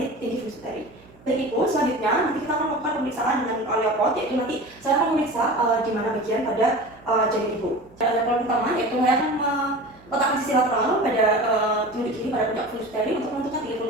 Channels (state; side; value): noise; right; hum, 26 dB below the sound